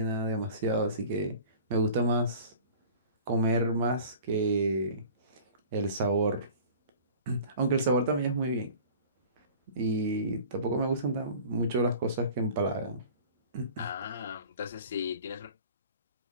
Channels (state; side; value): inverted; both; correlation -0.44